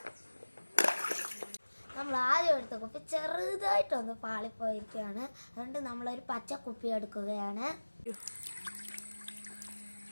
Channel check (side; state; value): both; inverted; correlation -1.00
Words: നമ്മൾ ആദ്യം എടുത്ത കുപ്പി ചെറുതായിട്ടൊന്ന് പാളിപ്പോയിരിക്കുകയാണ്. അതുകൊണ്ട് നമ്മളൊരു പച്ച കുപ്പി എടുക്കുകയാണ്.